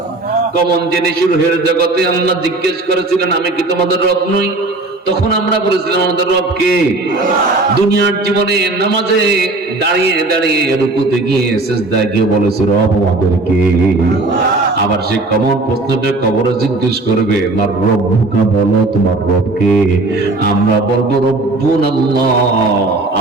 কমন জিনিস রুহের জগতে আল্লাহ জিজ্ঞেস করেছিলেন, আমি কি তোমাদের রব নই? তখন আমরা বলেছিলাম আমাদের রবকে। দুনিয়ার জীবনে নামাজে দাঁড়িয়ে দাঁড়িয়ে রুকুতে গিয়ে সিজদায় গিয়ে বলেছে রব আমাদেরকে। আবার সে কমন প্রশ্নটা কবরে জিজ্ঞেস করবে আমার রব্বুকা, বলো তোমার রবকে। আমরা বলবো রব্বুন আল্লাহ,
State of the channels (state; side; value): quieter; left; 3.1 dB